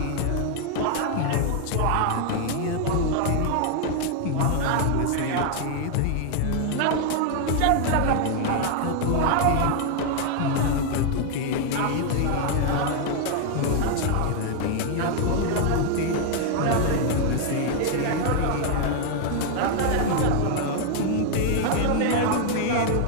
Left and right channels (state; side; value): different; both; correlation 0.00